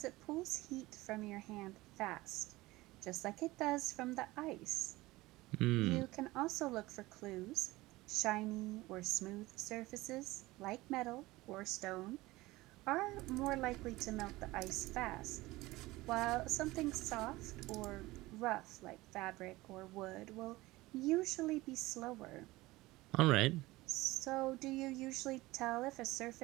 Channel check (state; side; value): quieter; left; 19.6 dB